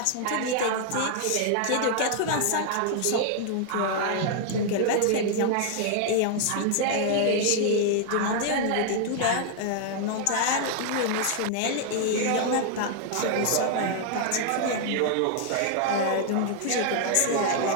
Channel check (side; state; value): both; different; correlation 0.00